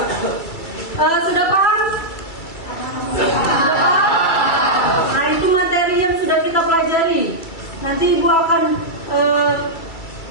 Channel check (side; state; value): right; late; 2.3 ms